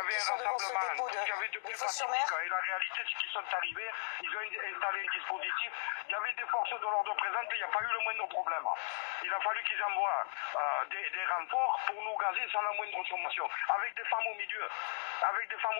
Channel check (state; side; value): silent; right; digital silence